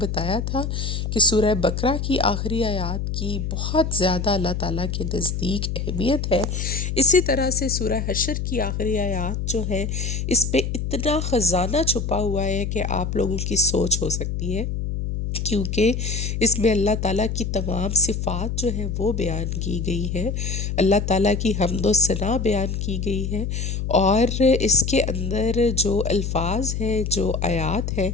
تھا کہ سورہ بقرہ کی آخری آیات کی بہت زیادہ اللہ تعالیٰ کے نزدیک اہمیت ہے، اسی طرح سے سورہ حشر کی آخری آیات جو ہے اس پہ اتنا خزانہ چھپا ہوا ہے کہ آپ لوگوں کی سوچ ہو سکتی ہے کیونکہ اس میں اللہ تعالیٰ کی تمام صفات جو ہے وہ بیان کی گئی ہے، اللہ تعالیٰ کی حمد و ثنا بیان کی گئی ہے، اور اس کے اندر جو الفاظ ہیں، جو آیات ہیں،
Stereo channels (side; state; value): left; noise; hum, 2 dB below the sound